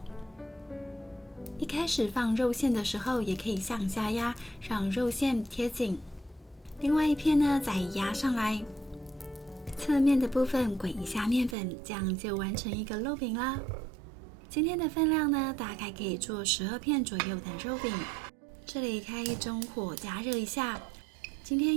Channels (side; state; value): left; drops out; at 11.6 s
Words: 一开始放肉馅的时候，也可以向下压，让肉馅贴紧。另外一片呢，再压上来，侧面的部分滚一下面粉，这样就完成一个肉饼啦。今天的分量呢，大概可以做12片左右的肉饼。这里开中火加热一下。今